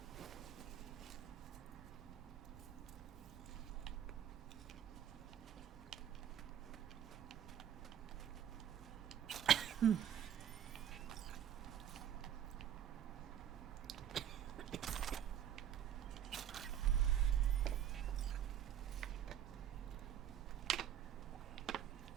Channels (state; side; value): quieter; left; 10.0 dB